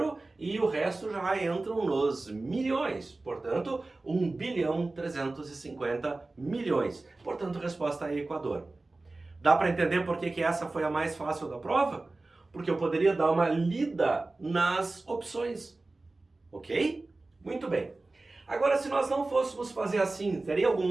e o resto já entram nos milhões. Portanto, 1 bilhão 350 milhões. Portanto, resposta é Equador. Dá para entender por que essa foi a mais fácil da prova? Porque eu poderia dar uma lida nas opções. Ok? Muito bem. Agora, se nós não fôssemos fazer assim, teria algum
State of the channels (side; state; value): left; quieter; 3.2 dB